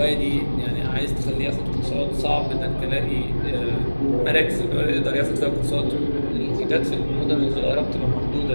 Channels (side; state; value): both; inverted; correlation -1.00